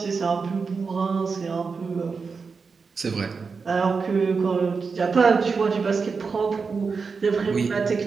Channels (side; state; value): left; quieter; 5.0 dB